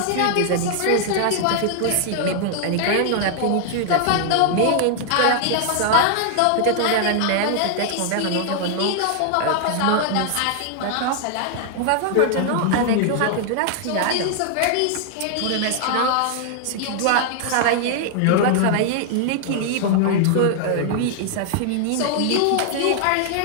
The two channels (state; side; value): different; both; correlation 0.00